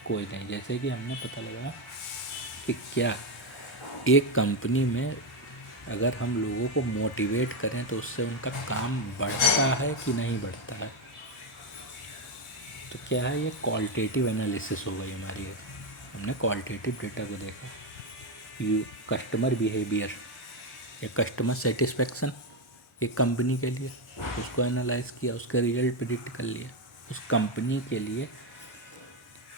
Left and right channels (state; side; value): normal; both; correlation 0.07